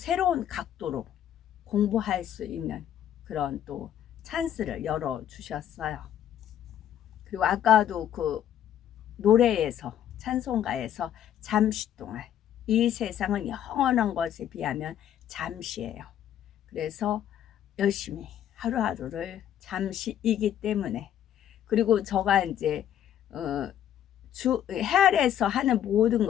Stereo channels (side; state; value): right; quieter; 10.6 dB